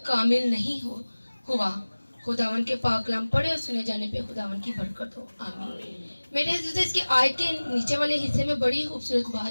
कामिल नहीं हुआ। खुदावन के पाक कलाम पढ़े और सुने जाने पे खुदावन की बरकत हो, आमीन। मेरे अज़ीज़ों, इसकी आयत के नीचे वाले हिस्से में बड़ी खूबसूरत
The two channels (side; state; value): both; inverted; correlation -1.00